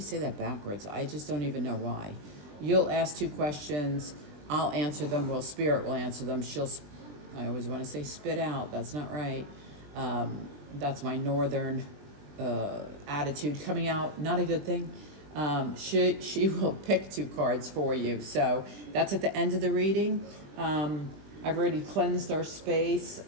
say that backwards. I just don't even know why. You'll ask 2 questions. I'll answer them. Well, Spirit will answer them. I always want to say spit out. That's not right. That's my northern attitude coming out. Not a good thing. She will pick 2 cards for you. So that's at the end of the reading. I've already cleansed our space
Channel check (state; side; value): late; left; 20 ms